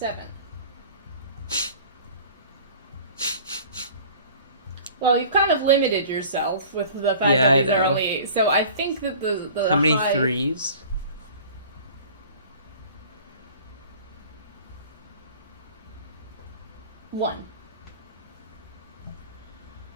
Well, you've kind of limited yourself with the fact Yeah, I that these are know. only 8. So I think that the How many high... 3s? 1.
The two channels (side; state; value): both; inverted; correlation -0.45